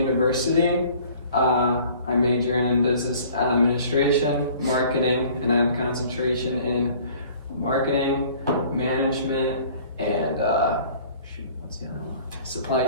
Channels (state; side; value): inverted; both; correlation -0.51